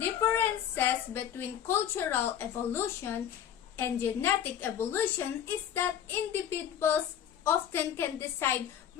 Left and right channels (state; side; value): quieter; right; 9.6 dB